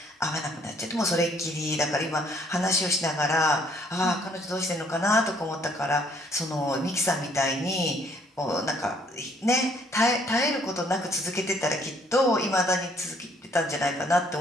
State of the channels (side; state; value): both; normal; correlation 0.64